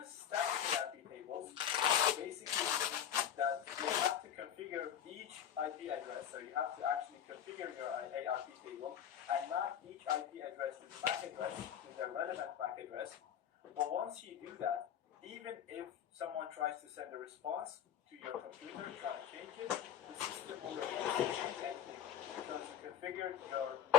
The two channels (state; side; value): quieter; right; 9.7 dB